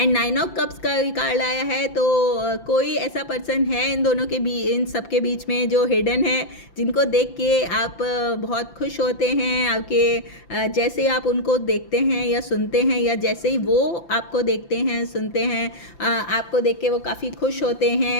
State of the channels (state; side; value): late; right; 5.9 ms